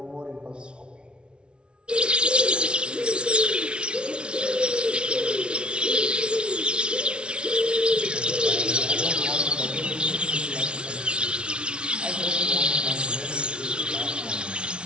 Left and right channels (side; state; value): left; late; 0.057 ms